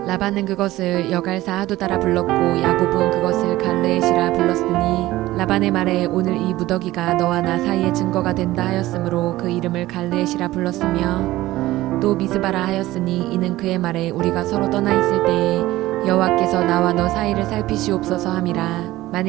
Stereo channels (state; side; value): quieter; left; 16.8 dB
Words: 라반은 그것을 여갈사 하두다라 불렀고 야곱은 그것을 갈르엣이라 불렀으니 라반의 말에 오늘 이 무더기가 너와 나 사이의 증거가 된다 하였으므로 그 이름을 갈르엣이라 불렀으며 또 미스바라 하였으니 이는 그의 말에 우리가 서로 떠나 있을 때에 여호와께서 나와 너 사이를 살피시옵소서 함이라.